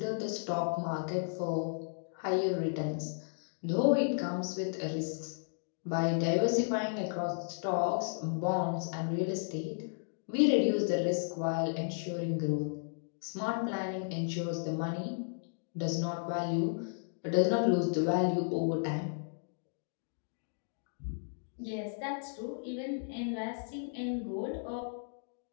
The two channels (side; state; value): right; silent; digital silence